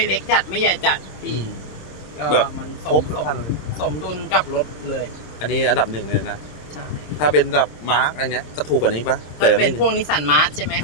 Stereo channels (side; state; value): right; late; 26 ms